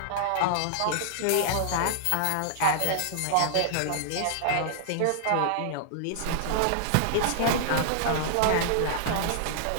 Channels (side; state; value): both; different; correlation -0.01